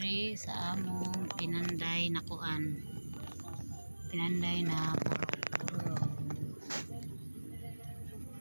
sa among pinanday na kuan. Pinanday na puro.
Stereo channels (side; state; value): both; inverted; correlation -1.00